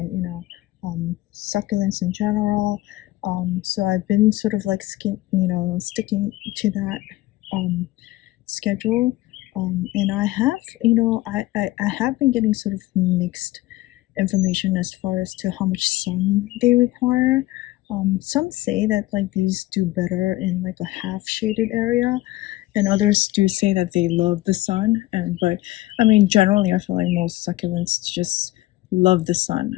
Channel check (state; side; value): quieter; right; 17.6 dB